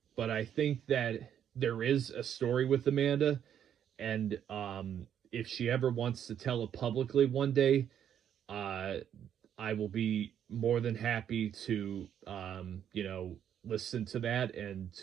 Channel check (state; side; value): quieter; left; 9.4 dB